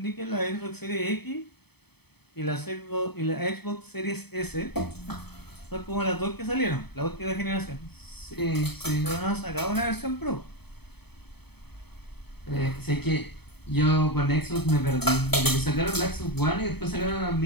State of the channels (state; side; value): late; right; 0.97 ms